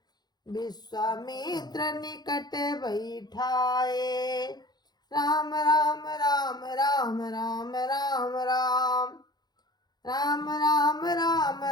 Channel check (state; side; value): late; right; 0.20 ms